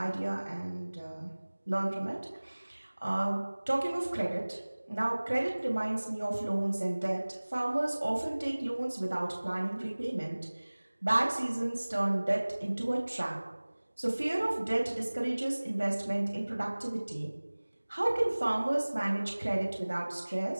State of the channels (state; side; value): inverted; both; correlation -1.00